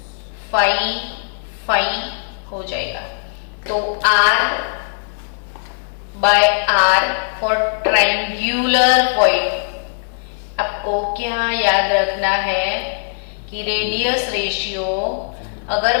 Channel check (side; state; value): right; silent; 62 dB below the other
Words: हो जाएगा। तो R by R for triangular void. आपको क्या याद रखना है कि रेडियस रेशियो अगर